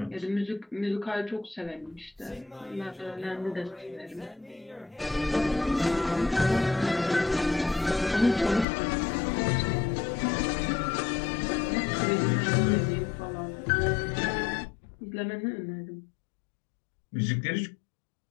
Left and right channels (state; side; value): drops out; right; at 8.7 s